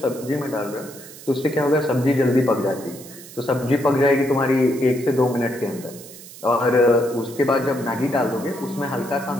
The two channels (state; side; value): noise; right; hiss, 17 dB below the sound